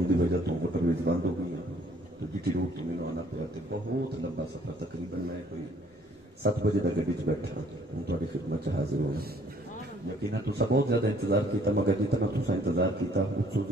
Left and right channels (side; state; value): both; normal; correlation 0.60